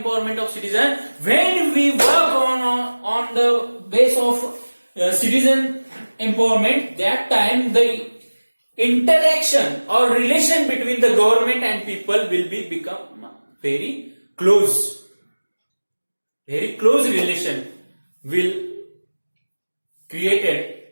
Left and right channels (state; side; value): inverted; both; correlation -1.00